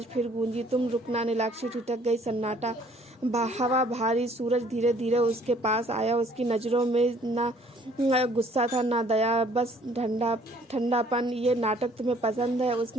फिर गूंजी, तुम रुकना। नीलाक्षी ठिठक गई। सन्नाटा, हवा भारी। सूरज धीरे धीरे उसके पास आया। उसकी नजरों में ना गुस्सा था, ना दया, बस ठंडापन। ये नाटक तुम्हें पसंद है?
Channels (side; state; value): both; normal; correlation 0.59